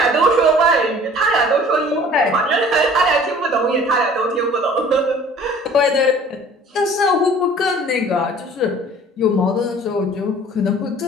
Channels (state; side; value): normal; both; correlation 0.49